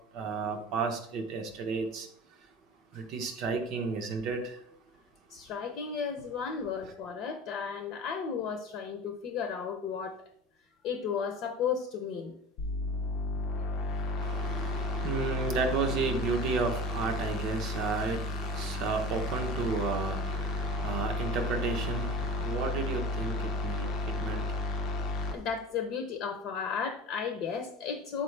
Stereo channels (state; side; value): normal; both; correlation 0.35